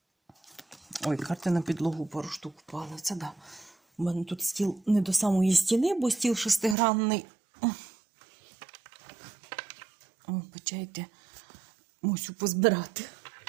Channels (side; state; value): left; drops out; at 6.8 s